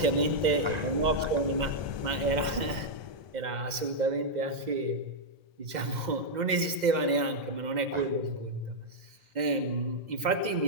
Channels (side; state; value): left; late; 2.0 ms